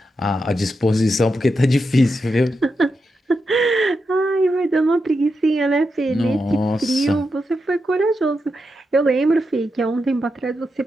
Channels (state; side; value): normal; both; correlation 0.86